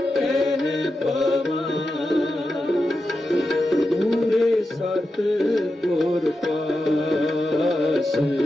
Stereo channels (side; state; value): both; normal; correlation 0.89